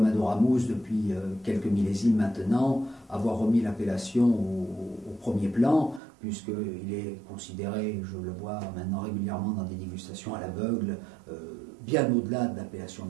Ramous depuis quelques millésimes maintenant, avoir remis l'appellation au premier plan, puisqu'il est considéré, je le vois maintenant régulièrement dans des dégustations à l'aveugle, bien au-delà de l'appellation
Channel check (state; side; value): drops out; left; at 6.0 s